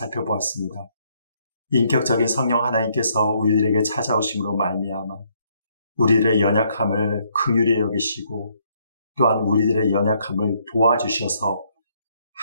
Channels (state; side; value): inverted; both; correlation -0.71